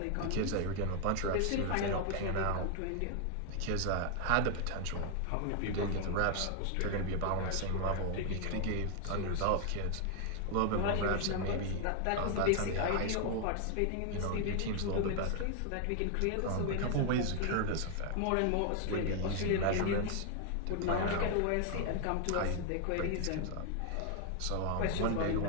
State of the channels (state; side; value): different; both; correlation 0.00